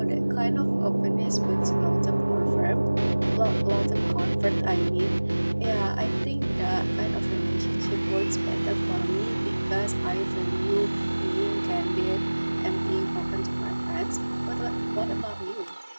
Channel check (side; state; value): both; inverted; correlation -1.00